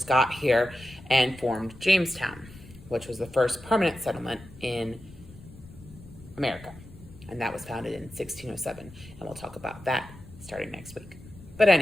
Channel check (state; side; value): noise; left; rumble, 19 dB below the sound